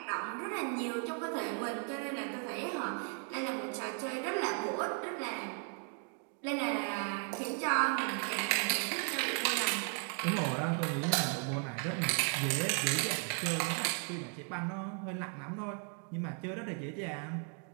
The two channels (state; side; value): quieter; left; 37.6 dB